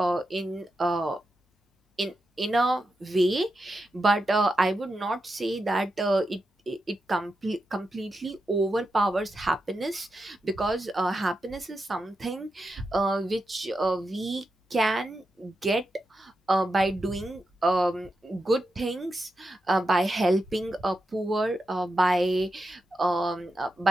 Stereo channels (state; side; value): normal; both; correlation 0.88